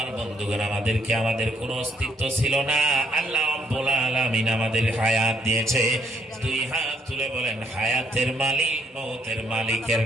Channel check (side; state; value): both; normal; correlation 0.70